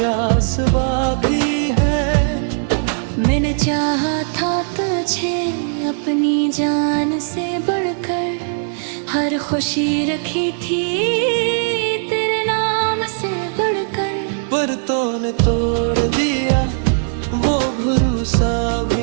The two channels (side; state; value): left; silent; digital silence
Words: बाकी है। मैंने चाहा था तुझे अपनी जान से बढ़कर, हर खुशी रखी थी तेरे नाम से बढ़कर। पर तूने तोड़ दिया वो भरोसा